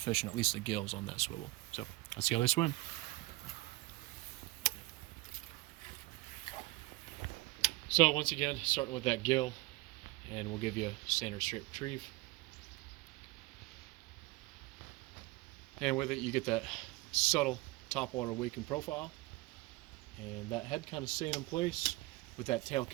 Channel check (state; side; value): quieter; left; 21.1 dB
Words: at least the gills on that swivel. So let's see how they swim. So once again, starting with that gill, and we'll give you a standard straight retrieve. And with it, you get that subtle topwater waking profile, and that head kind of staying in place with that tail